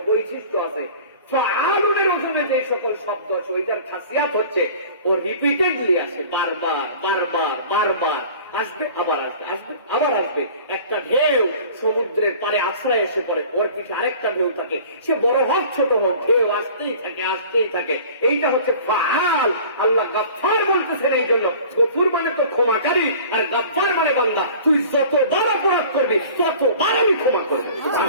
বৈশিষ্ট্য আছে। ফাআলুনের ওজনে যে সকল শব্দ আছে ওইটার খাসিয়াত হচ্ছে ও রিপিটেডলি আসে, বারবার বারবার বারবার আসবে, আবার আসবে, আসবে আবার আসবে। একটা ঢেউ সমুদ্রের পারে আশ্রয় এসে পড়ে, ওর পিঠে আরেকটা ঢেউ থাকে, সে বড় হোক ছোট হোক, ঢেউ আসতেই থাকে আসতেই থাকে। এইটা হচ্ছে ফাআল। আল্লাহ গফফার বলতেছেন এই জন্য। গফুর মানে তো ক্ষমাকারী, আর গফফার মানে বান্দা তুই যতবার অপরাধ করবি ততবার আমি ক্ষমা করবো।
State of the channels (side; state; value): both; inverted; correlation -0.44